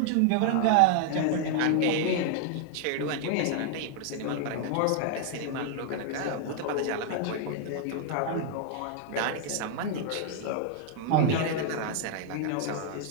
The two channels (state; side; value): different; both; correlation 0.00